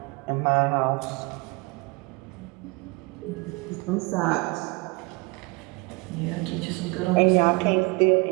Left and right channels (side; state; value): left; quieter; 27.4 dB